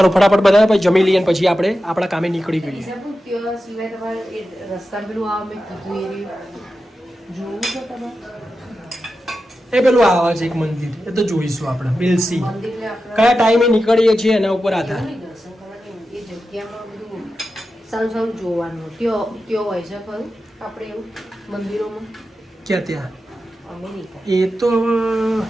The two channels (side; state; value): both; normal; correlation 0.91